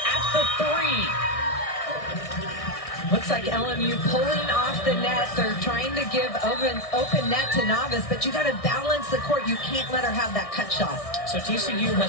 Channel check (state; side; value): late; right; 1.6 ms